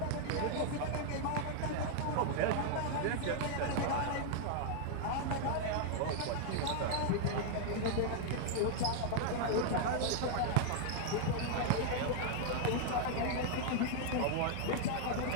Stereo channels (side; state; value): both; different; correlation 0.00